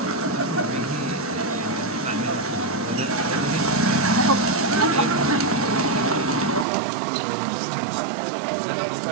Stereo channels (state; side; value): drops out; left; at 6.7 s